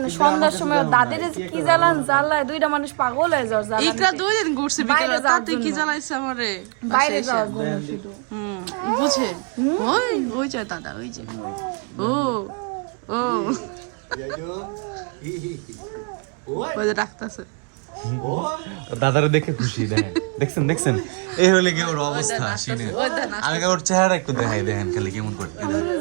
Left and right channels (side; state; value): left; quieter; 36.9 dB